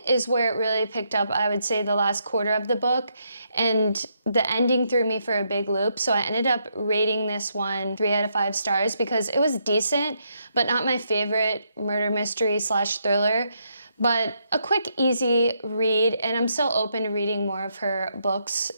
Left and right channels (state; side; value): inverted; both; correlation -0.78